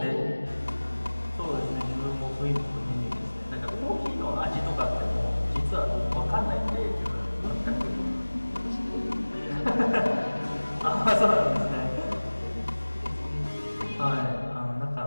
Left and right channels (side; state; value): both; inverted; correlation -1.00